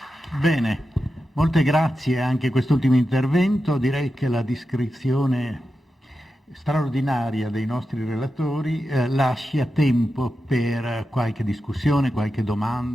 Bene. Molte grazie anche a quest'ultimo intervento. Direi che la descrizione straordinaria dei nostri relatori lascia tempo per qualche discussione, qualche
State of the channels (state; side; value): normal; both; correlation 0.90